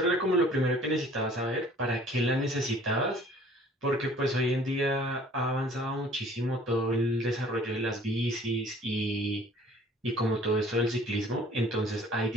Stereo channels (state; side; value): normal; both; correlation 0.52